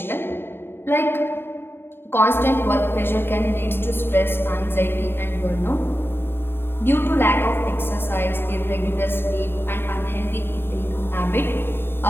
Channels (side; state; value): right; late; 0.11 ms